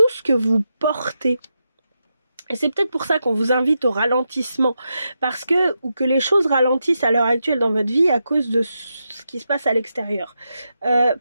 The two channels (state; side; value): inverted; both; correlation -0.86